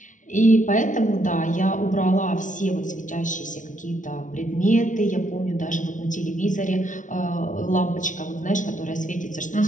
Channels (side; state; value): right; late; 0.37 ms